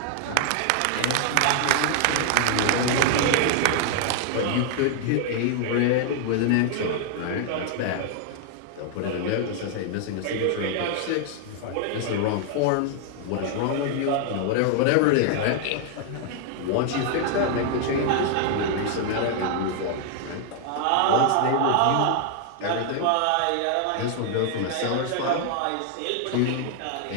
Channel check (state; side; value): different; both; correlation 0.00